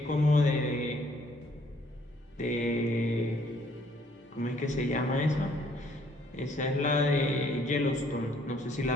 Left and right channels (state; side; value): normal; both; correlation 0.64